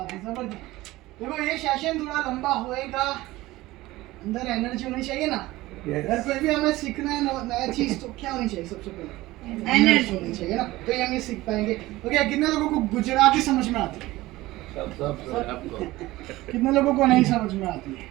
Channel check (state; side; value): quieter; left; 18.3 dB